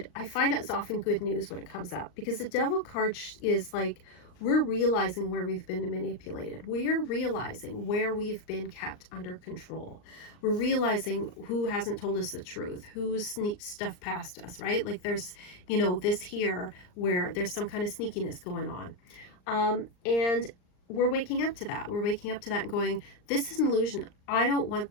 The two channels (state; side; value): late; right; 39 ms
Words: I find it's often good news when it comes up, because the Devil card is like, we're realizing where we've been manipulated. We're realizing where we've been kept under control. We're realizing who hasn't told us the truth, who's sneaked stuff past us, right? Like there's, you know, this here where there's some kind of sneakiness going on. And we're waking up to that. We're waking up to that and going, this is an illusion. I don't want